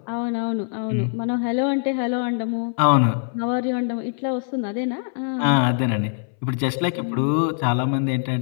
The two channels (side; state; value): right; silent; 63 dB below the other